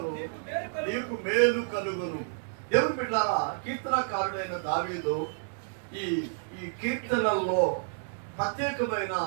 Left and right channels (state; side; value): silent; left; 58 dB below the other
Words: నీకు మేలు కలుగును. దేవుని బిడ్డలారా, కీర్తనకారుడైన దావీదు ఈ కీర్తనల్లో ప్రత్యేకమైన